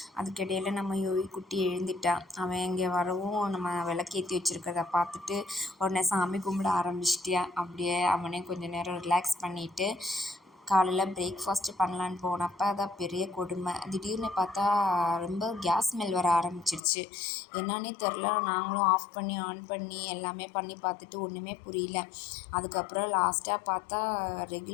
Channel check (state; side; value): drops out; right; at 16.8 s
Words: அதுக்கிடையில் நம்ம யோகி குட்டி எழுந்துட்டான். அவன் இங்கே வரவும் நம்ம விளக்கேற்றி வச்சுருக்கிறத பார்த்துட்டு உடனே சாமி கும்பிட ஆரம்பிச்சிட்டியா. அப்படியே அவனே கொஞ்சம் நேரம் ரிலாக்ஸ் பண்ணிவிட்டு காலையில் பிரேக்ஃபாஸ்ட்டு பண்ணலான்னு போனப்போ அதான் பெரிய கொடுமை. திடீர்னு பார்த்தா ரொம்ப கேஸ் ஸ்மெல் வர ஆரம்பிச்சிருச்சு. என்னான்னே தெரில. நாங்களும் ஆஃப் பண்ணி ஆன் பண்ணி எல்லாமே பண்ணி பார்த்துட்டு ஒன்றுமே புரியல. அதுக்கப்புறம் லாஸ்ட்டாக பார்த்தா